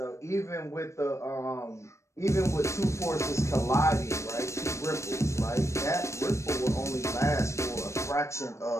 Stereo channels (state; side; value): late; right; 0.14 ms